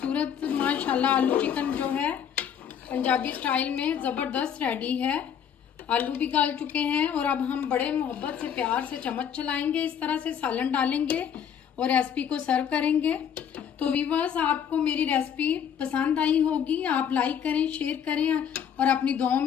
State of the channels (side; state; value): right; quieter; 8.4 dB